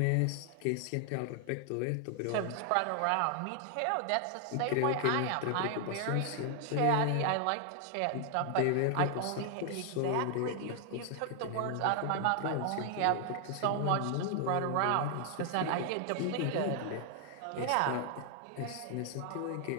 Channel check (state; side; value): different; both; correlation 0.00